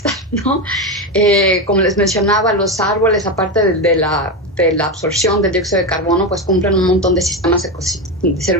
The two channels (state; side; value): normal; both; correlation 0.14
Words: ¿no? Como les mencionaba, los árboles, aparte de la absorción del dióxido de carbono, pues cumplen un montón de de